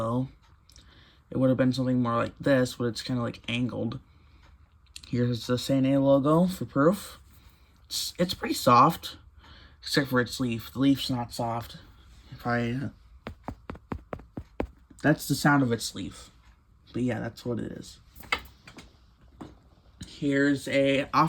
It would have been something more like this, but it's kind of like angled. Here's the Sane logo for proof. It's pretty soft, except for its leaf. The leaf's not soft. That's the sound of its leaf. But yeah, that's what it is. Here's a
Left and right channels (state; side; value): identical; both; correlation 1.00